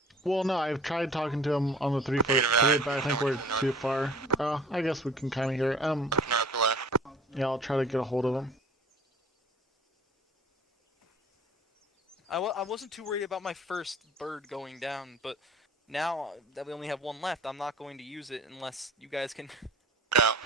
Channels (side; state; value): both; normal; correlation 0.47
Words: Well, no, I've tried talking to him on the 343, but I think we're too far. I guess we can kind of hear it. Yeah, I'll try to get a hold of him. I wasn't too worried about my first bird going down, but now that we only have one left, I'm not going to use it unless you guys can.